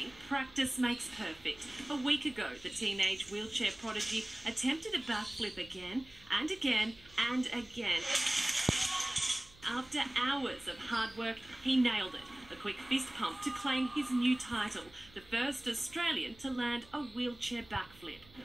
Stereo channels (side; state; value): right; noise; hum, 24 dB below the sound